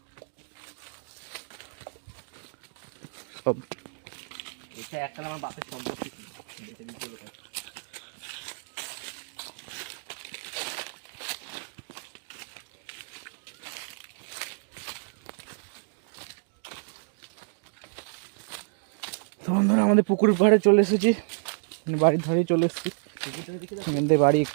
সব এটা একটা আমার বাপের সম্পত্তি ছিল। তো বন্ধুরা আমাদের পুকুরের পাড়ে চলে এসেছি, বাড়ির ধারেই চলে এসেছি। এখান থেকে বাড়ি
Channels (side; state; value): left; silent; digital silence